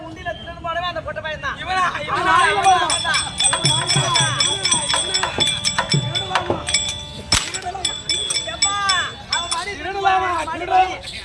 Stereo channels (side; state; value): both; identical; correlation 1.00